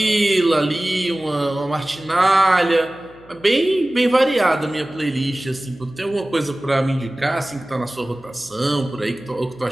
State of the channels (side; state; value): right; noise; hum, 26 dB below the sound